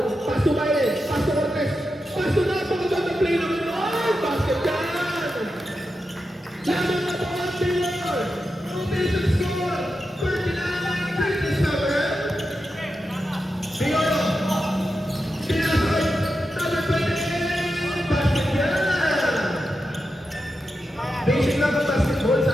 Pasto Baile! Pasto Cortez! Pasto na! Pagkaganda play naman yun! Ay! Basket yan! Laman na po ang Taylor! Rotation score! 39-37! Biolo! Pinasay! Number 28! Basket yan! Basic lang ang basketball,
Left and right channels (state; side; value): normal; both; correlation 0.89